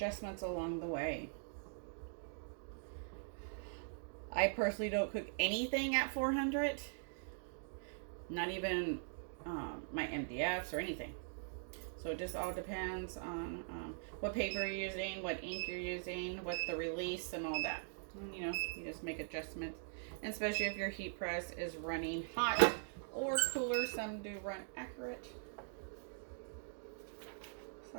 along the way. I personally don't cook anything at 400. Not even my MDFs or anything. So it just all depends on what paper you're using, what ink you're using, what the release and all that. And, you know, you just make adjustments. And especially if your heat press is running hot or cooler. Some do run accurate.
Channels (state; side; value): silent; left; digital silence